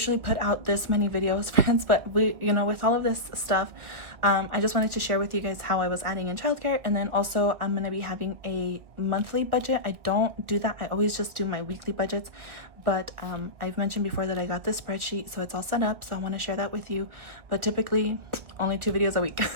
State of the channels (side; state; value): left; late; 1.6 ms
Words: put out this many videos, friends, but with all of this stuff, I just wanted to share with you guys how I was adding in childcare. And then also I'm going to be having a monthly budget. I don't do that. I always just do my weekly budgets. But I've mentioned before that I got this spreadsheet, so it's all set up. So I want to share that with you. But typically only 2 videos a week.